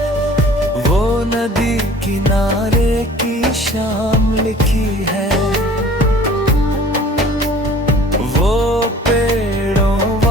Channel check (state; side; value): normal; both; correlation 0.49